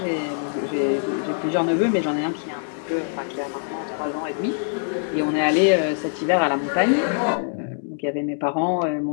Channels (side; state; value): right; silent; digital silence